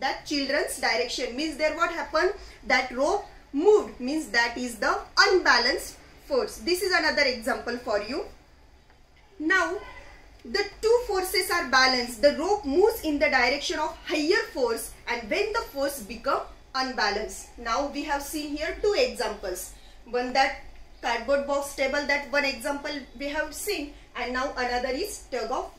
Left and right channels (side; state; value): both; identical; correlation 1.00